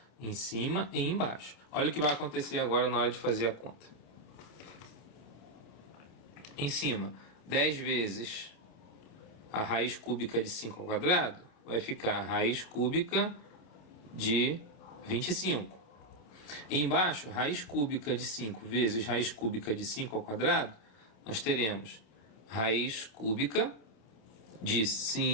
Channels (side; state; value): right; late; 27 ms